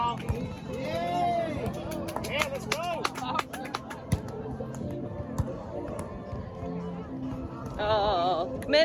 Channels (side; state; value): both; identical; correlation 1.00